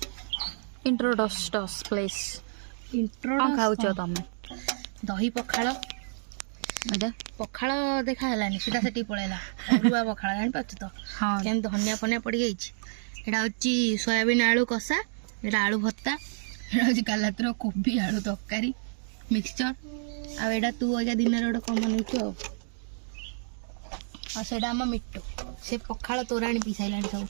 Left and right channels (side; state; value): left; silent; digital silence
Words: Introduce place. कौन खाऊच तमे दही पखाल एटा पखाल देखा हलानी सीधा सेठी पळेला अरुआ पखाल जानि पाछ तो हां केन धनिया फनिया पड़ी गई एटा होची सोयाबीन आलू कसा एटा आलू भत्ता एटा होची कालातर कोबी आलू तरकारी मिक्सचर आ एटा तू अजा दिन रे कमन होतो आ सेटा हम मिट्टू से पखाल तोराणी पिसाइलानी